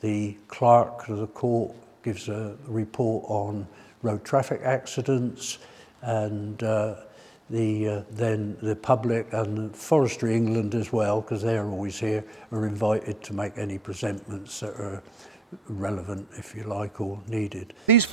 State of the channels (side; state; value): both; normal; correlation 0.83